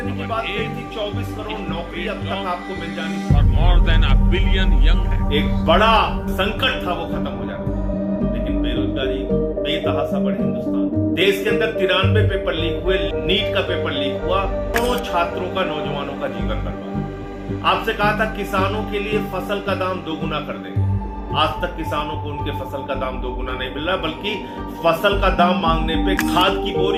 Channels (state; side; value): identical; both; correlation 1.00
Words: की बात कही थी, 24 करोड़ नौकरी अब तक आपको मिल जानी थी। More than a billion young. एक बड़ा संकट था, वो खत्म हो जाना था। लेकिन बेरोजगारी बेतहाशा बढ़ी हिंदुस्तान। देश के अंदर 93 पेपर लीक हुए, नीट का पेपर लीक हुआ, करोड़ों छात्रों का, नौजवानों का जीवन बर्बाद। आपसे कहा था किसानों के लिए फसल का दाम 2 गुना कर देंगे। आज तक किसानों को उनके फसल का दाम 2 गुना नहीं मिल रहा, बल्कि फसल का दाम मांगने पे, खाद की